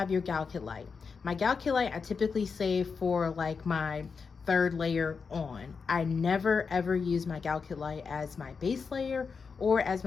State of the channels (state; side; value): quieter; right; 5.4 dB